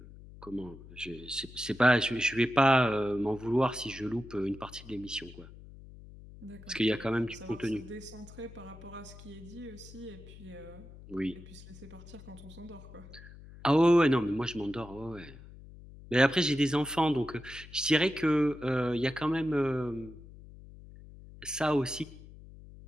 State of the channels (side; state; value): left; noise; hum, 18 dB below the sound